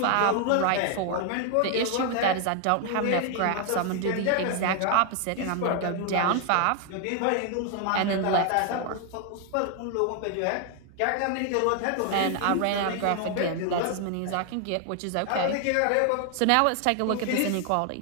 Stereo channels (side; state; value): both; different; correlation 0.00